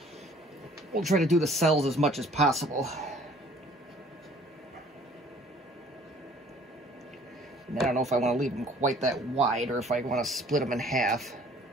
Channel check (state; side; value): normal; both; correlation 0.54